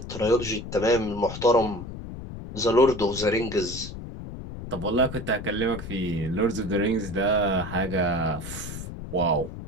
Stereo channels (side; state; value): left; noise; rumble, 10 dB below the sound